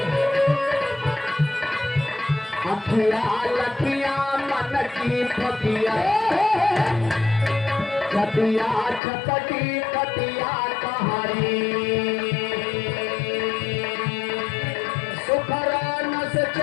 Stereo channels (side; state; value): right; drops out; at 9.0 s